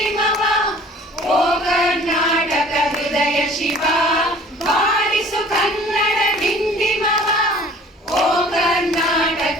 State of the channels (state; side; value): normal; both; correlation 0.49